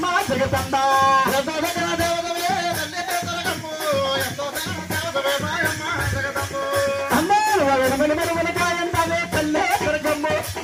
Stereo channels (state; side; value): identical; both; correlation 1.00